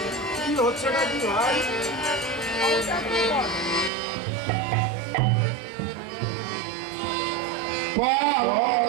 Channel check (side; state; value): left; drops out; at 3.9 s